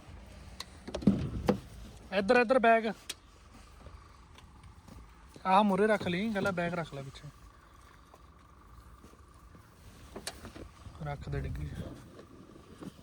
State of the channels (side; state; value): both; identical; correlation 1.00